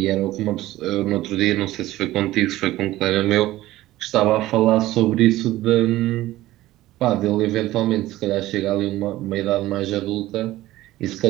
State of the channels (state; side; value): quieter; left; 16.2 dB